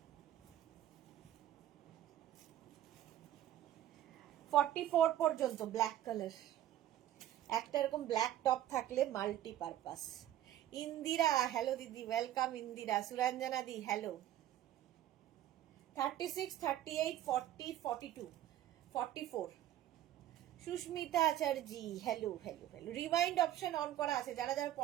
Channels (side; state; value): left; quieter; 12.6 dB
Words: 44 পর্যন্ত ব্ল্যাক কালার। একটা এরকম ব্ল্যাক টপ থাকলে মাল্টিপারপাস। ইন্দিরা, হ্যালো দিদি, ওয়েলকাম ইন্দিরা। সুরঞ্জনা দি, hello. 36, 38, 40, 42, 44। Susmita Acharya, hello hello hello. Rewind option on করা আছে, যারা যারা